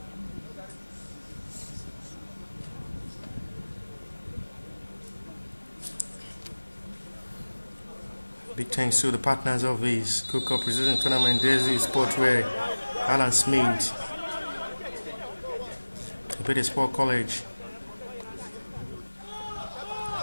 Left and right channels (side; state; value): both; inverted; correlation -1.00